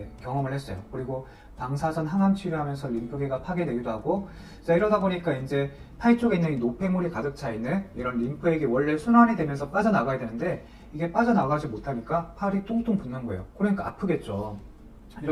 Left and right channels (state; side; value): identical; both; correlation 1.00